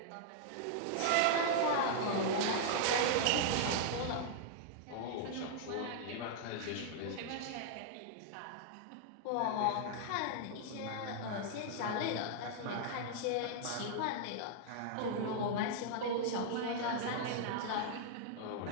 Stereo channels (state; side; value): different; both; correlation -0.01